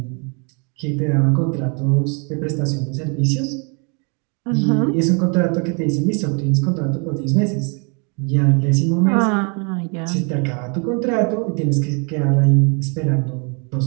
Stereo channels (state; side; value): quieter; left; 35.5 dB